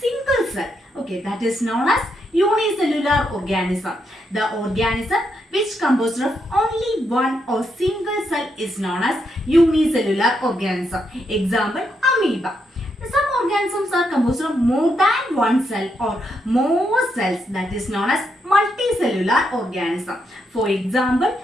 cell. Okay, that is known as unicellular organism. The organism which composed of only one or single cell is known as unicellular organism. Example, amoeba. Some organisms are composed of more than one cell or more cells, that is known as multicellular organism. For example,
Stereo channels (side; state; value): both; normal; correlation 0.80